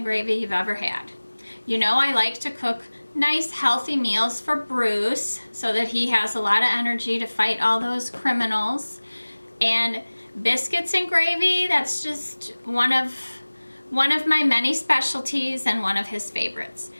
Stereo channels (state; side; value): inverted; both; correlation -1.00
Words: gravy you've ever had. You know I like to cook nice healthy meals for Bruce so that he has a lot of energy to fight all those criminals. And biscuits and gravy, that's just one of my many specialties and one of his favorites.